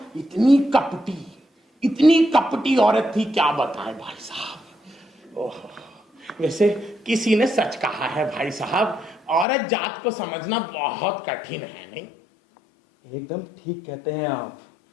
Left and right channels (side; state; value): right; drops out; at 9.5 s